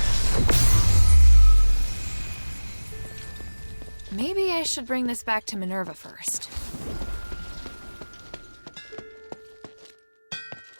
Maybe I should bring this back to Minerva first.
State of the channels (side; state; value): both; inverted; correlation -1.00